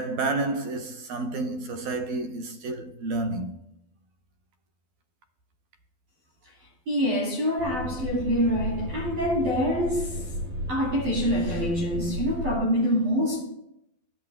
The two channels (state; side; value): late; left; 12 ms